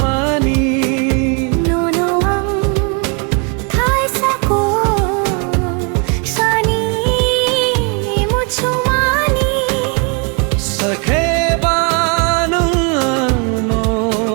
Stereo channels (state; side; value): quieter; left; 35.8 dB